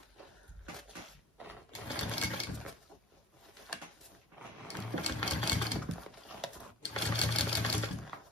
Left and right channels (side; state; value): both; normal; correlation 0.42